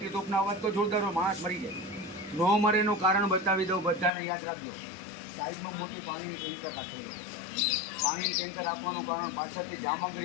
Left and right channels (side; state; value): right; drops out; at 4.1 s